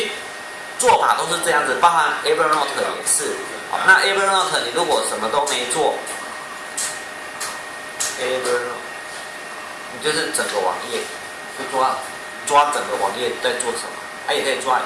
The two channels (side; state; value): both; identical; correlation 1.00